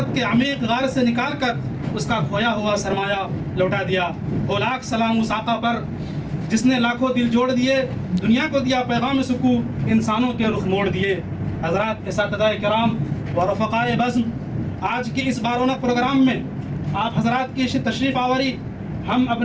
کے عمیق غار سے نکال کر اس کا کھویا ہوا سرمایہ لوٹا دیا۔ وہ لاکھ سلام اس آقا پر جس نے لاکھوں دل جوڑ دیے، دنیا کو دیا پیغام سکون، انسانوں کے رخ موڑ دیے۔ حضرات، اساتذہ کرام و رفقائے بزم، آج کی اس بارونق پروگرام میں آپ حضرات کی تشریف آوری ہم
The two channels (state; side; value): identical; both; correlation 1.00